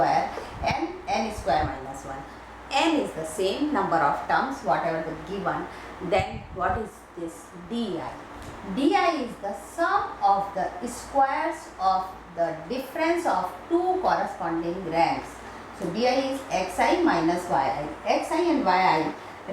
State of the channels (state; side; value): identical; both; correlation 1.00